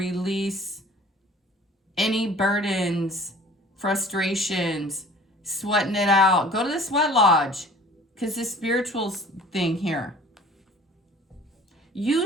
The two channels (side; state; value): both; normal; correlation 0.49